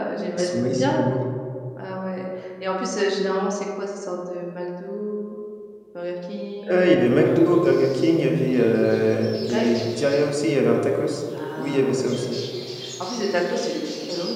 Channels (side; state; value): both; identical; correlation 1.00